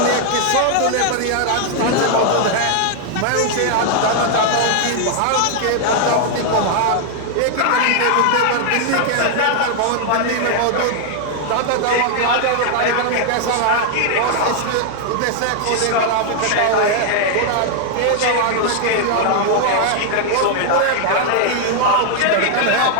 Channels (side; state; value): both; different; correlation 0.00